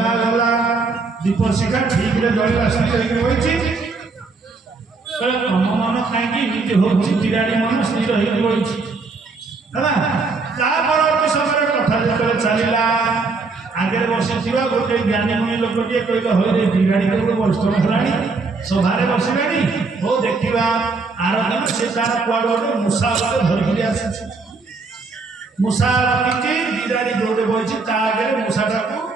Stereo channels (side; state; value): left; quieter; 4.1 dB